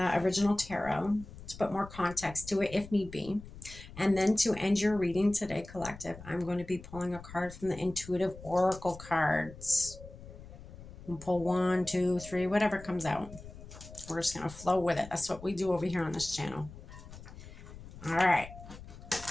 original tarot to put more context to it if need be. And then to end your reading today, collective, I'm going to be pulling a card from the Intuitive Oracle cards. We'll pull 1, 2, 3, whatever comes out. We're just going to flow with it. That's what we do over here on this channel. All right.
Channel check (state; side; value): noise; left; rumble, 15 dB below the sound